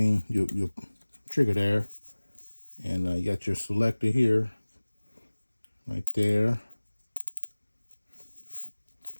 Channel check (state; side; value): inverted; both; correlation -1.00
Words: your trigger there. And you got your selector here. Right there.